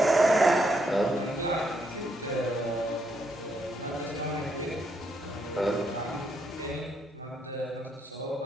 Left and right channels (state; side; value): normal; both; correlation 0.76